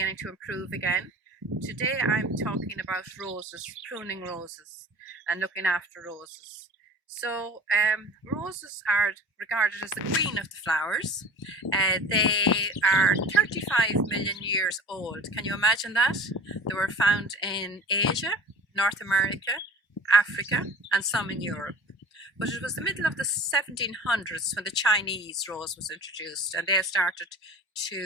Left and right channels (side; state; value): both; normal; correlation 0.41